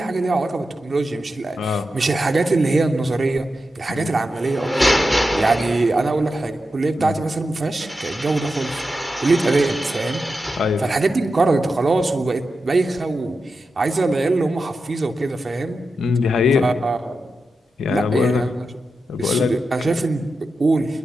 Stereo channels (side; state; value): both; normal; correlation 0.90